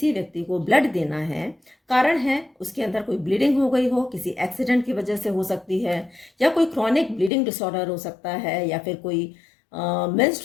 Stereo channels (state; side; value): drops out; right; at 7.3 s